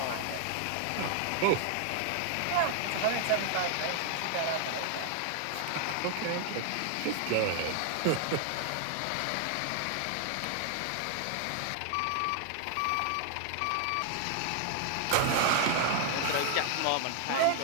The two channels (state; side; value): different; both; correlation 0.00